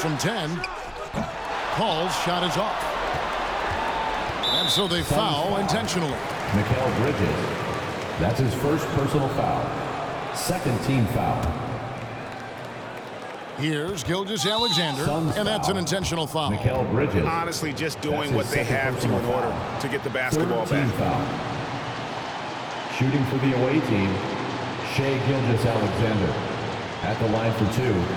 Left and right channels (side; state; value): both; identical; correlation 1.00